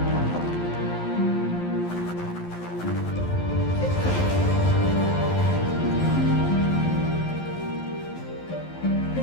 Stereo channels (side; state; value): right; late; 11 ms